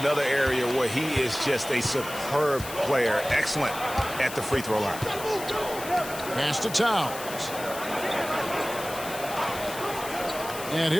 area where he is just a superb player. Excellent at the free throw line. Pass to Towns. And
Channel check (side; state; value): left; noise; hiss, 11 dB below the sound